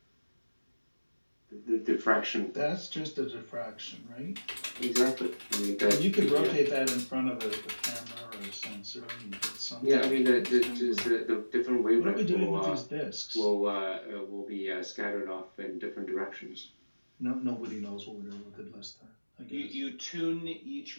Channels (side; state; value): both; inverted; correlation -1.00